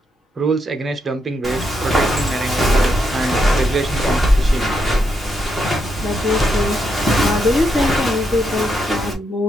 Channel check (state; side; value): normal; both; correlation 0.80